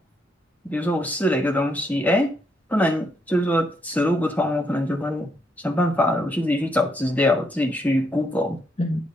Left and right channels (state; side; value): normal; both; correlation 0.76